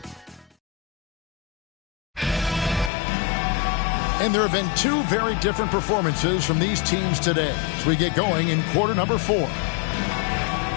And there have been two very different performances from these teams today as we get going in quarter number 4.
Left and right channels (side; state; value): right; drops out; at 2.9 s